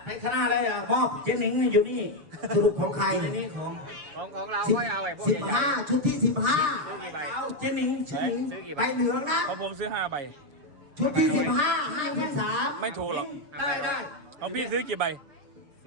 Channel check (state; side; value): late; left; 6.8 ms